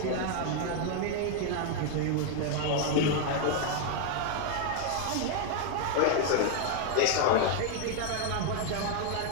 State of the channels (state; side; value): different; both; correlation 0.01